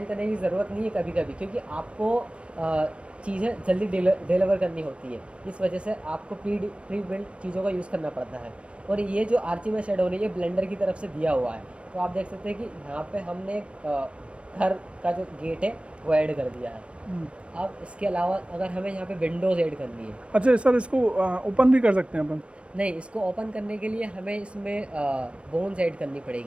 करने की ज़रूरत नहीं है कभी कभी, क्योंकि आपको चीज़ें जल्दी डिलीवर करनी होती है। इस वजह से आपको प्री बिल्ड चीज़ों का यूज़ करना पड़ता है। और ये जो आर्चिमेड शेडो है, ये ब्लेंडर की तरफ से दिया हुआ है। तो आप देख सकते हैं कि यहाँ पे हमने घर का जो गेट है वो ऐड कर दिया है। अब इसके अलावा अगर हमें यहाँ पे विंडोज़ ऐड करनी है, अच्छा सर, इसको ओपन भी कर सकते हैं अपन? नहीं, इसको ओपन करने के लिए हमें इसमें बोन्स ऐड करनी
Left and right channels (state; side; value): late; left; 0.060 ms